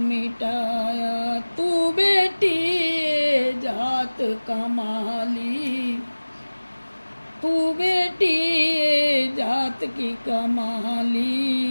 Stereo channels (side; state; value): both; inverted; correlation -1.00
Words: तू बेटी ये जात कमाली, तू बेटी ये जात की